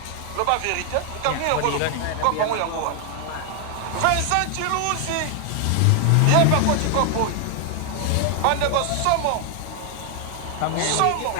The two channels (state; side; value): different; both; correlation 0.00